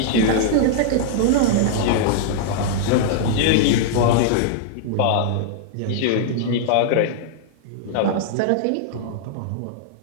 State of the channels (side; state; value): both; different; correlation -0.01